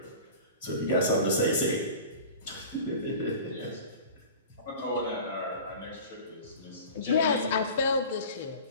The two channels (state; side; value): inverted; both; correlation -0.38